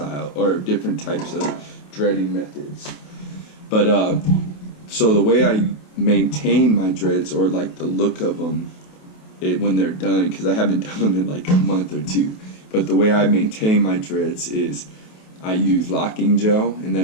or different types of dreading methods. But so the way I maintain my dreads, or like the look of them when they're done, because I haven't done them in like a month or two, but the way I maintain my dreads is I use locking gel, and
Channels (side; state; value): right; late; 28 ms